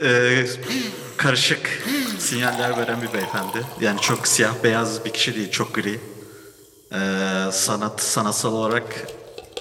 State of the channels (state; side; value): identical; both; correlation 1.00